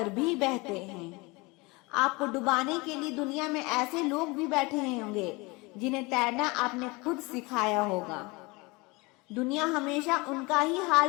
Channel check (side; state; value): right; quieter; 25.1 dB